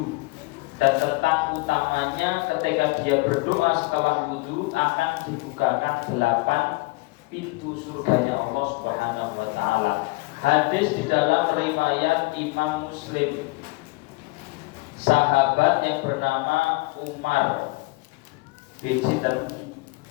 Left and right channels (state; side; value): quieter; right; 24.6 dB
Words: dan tentang utamanya ketika dia berdoa setelah wudu akan dibukakan 8 pintu surganya Allah Subhanahu wa taala. Hadis di dalam riwayat Imam Muslim. Sahabat yang bernama Umar bin